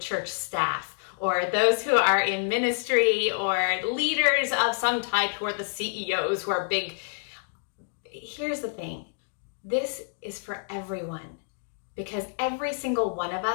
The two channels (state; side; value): silent; right; digital silence